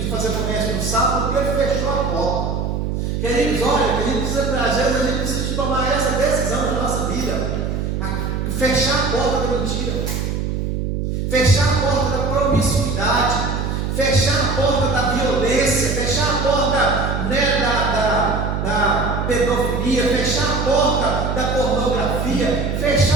fazer comércio no sábado, porque ele fechou a porta. Queridos, olha, às vezes a gente precisa de tomar essa decisão na nossa vida. Fechar a porta da mentira, fechar a porta da promiscuidade, fechar a porta da violência, fechar a porta, né, da pedofilia, fechar a porta da pornografia,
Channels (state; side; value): noise; right; hum, 2 dB below the sound